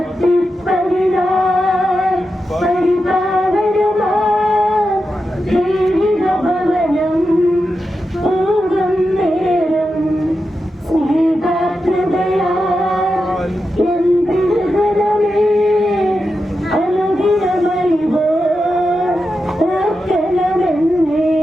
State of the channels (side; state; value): both; normal; correlation 0.89